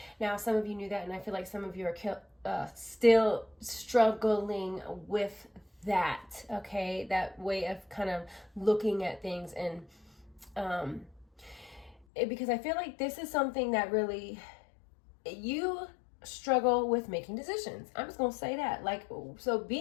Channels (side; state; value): right; drops out; at 12.1 s